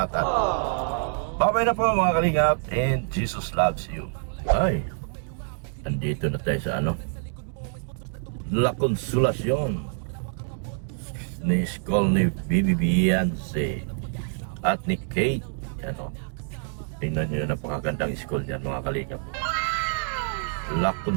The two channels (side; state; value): left; silent; 61 dB below the other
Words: Bye-bye na po mga kalingap and Jesus loves you. Ay, nandito na tayo sa La Consolacion ni school ni Bibi Beyonce at ni Kate. Tingnan nyo, napakagandang school niyan mga kalingap. La